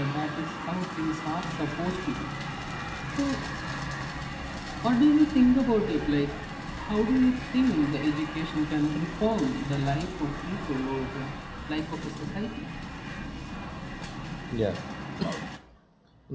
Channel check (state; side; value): identical; both; correlation 1.00